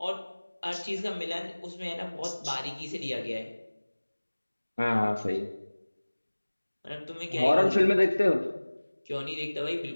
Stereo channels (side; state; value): both; inverted; correlation -1.00